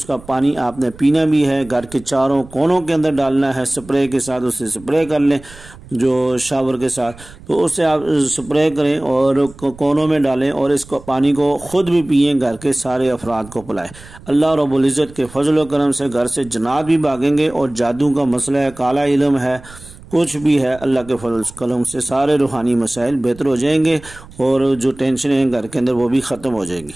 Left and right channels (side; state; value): right; noise; rumble, 20 dB below the sound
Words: کا پانی آپ نے پینا بھی ہے، گھر کے چاروں کونوں کے اندر ڈالنا ہے، سپرے کے ساتھ اسے سپرے کر لیں، جو شاور کے ساتھ، تو اس سے آپ سپرے کریں اور کونوں میں ڈالیں، اور اس کو پانی کو خود بھی پئیں، گھر کے سارے افراد کو پلائیں۔ اللہ رب العزت کے فضل و کرم سے گھر سے جنات بھی بھاگیں گے، اور جادو کا مسئلہ ہے، کالا علم ہے، کچھ بھی ہے، اللہ کے فضل و کرم سے سارے روحانی مسائل بہتر ہو جائیں گے، اور جو ٹینشنیں ہیں گھر کے اندر وہ بھی ختم ہو جائیں گی۔